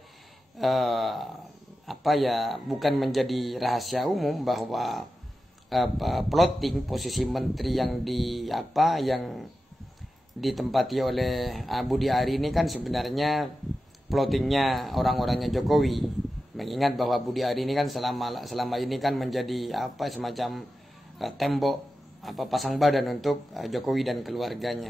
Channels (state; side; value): normal; both; correlation 0.92